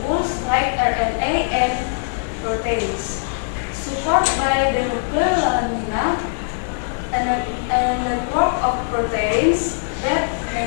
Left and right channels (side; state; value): right; silent; 55 dB below the other